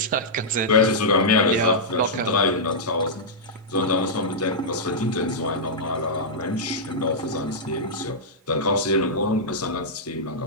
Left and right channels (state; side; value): normal; both; correlation -0.10